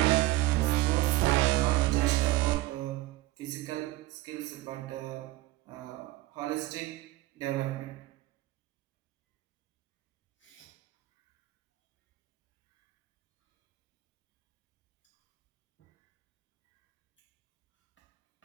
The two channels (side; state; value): left; quieter; 17.8 dB